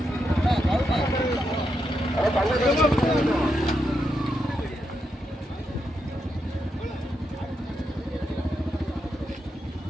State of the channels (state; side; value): normal; both; correlation 0.83